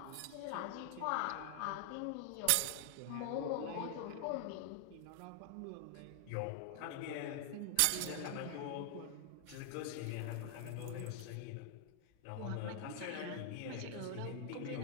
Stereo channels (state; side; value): different; both; correlation 0.00